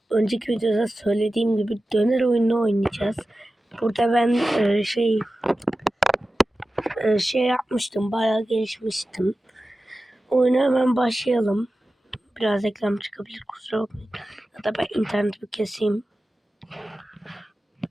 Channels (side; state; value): both; normal; correlation 0.94